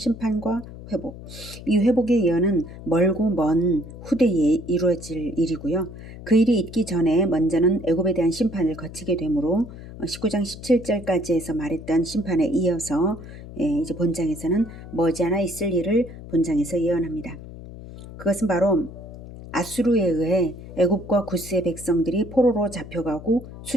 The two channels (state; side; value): noise; left; hum, 14 dB below the sound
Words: 회복. 이 회복의 예언은 멀고 먼 후대에 이루어질 일이고요. 그 일이 있기 전에 먼저는 애굽에 대한 심판을 거치게 되므로 19장 17절까지 해서 말했던 심판에 이어서 이제 본장에서는 머지않아 있을 일을 본장에서 예언합니다. 그것은 바로 아수르에 의해 애굽과 구스의 백성들이 포로로 잡혀가고